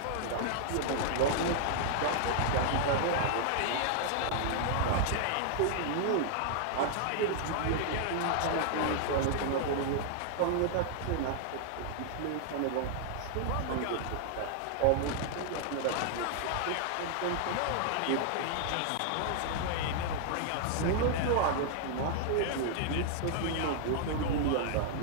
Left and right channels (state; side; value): different; both; correlation 0.00